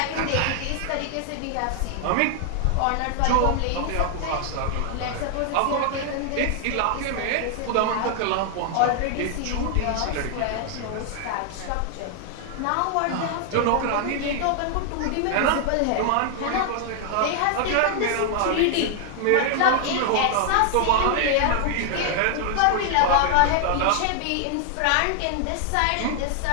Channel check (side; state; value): both; different; correlation 0.00